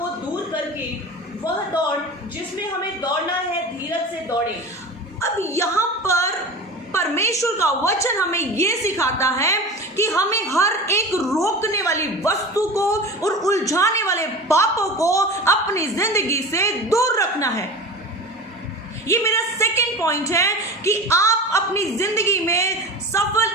दूर करके वह दौड़ जिसमें हमें दौड़ना है, धीरज से दौड़े। अब यहाँ पर परमेश्वर का वचन हमें यह सिखाता है कि हमें हर एक रोकने वाली वस्तु को और उलझाने वाले पापों को अपनी जिंदगी से दूर रखना है। ये मेरा सेकंड पॉइंट है कि आप अपनी जिंदगी में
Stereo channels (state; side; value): normal; both; correlation 0.32